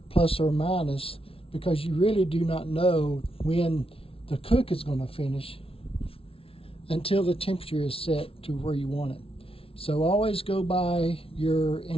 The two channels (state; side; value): late; right; 0.26 ms